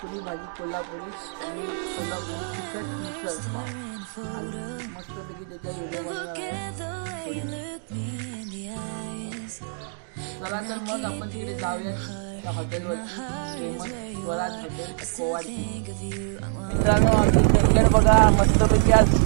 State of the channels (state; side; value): silent; left; digital silence